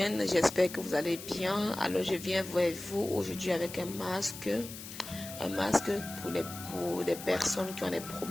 j'espère que vous allez bien. Alors je viens vers vous aujourd'hui avec un masque pour des personnes qui ont des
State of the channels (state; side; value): noise; left; hiss, 12 dB below the sound